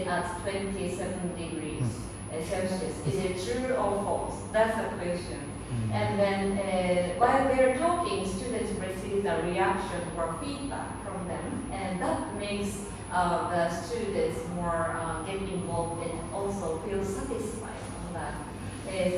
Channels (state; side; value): identical; both; correlation 1.00